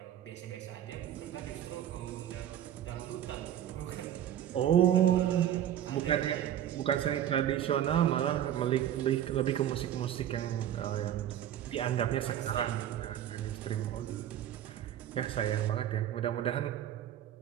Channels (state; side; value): quieter; left; 11.0 dB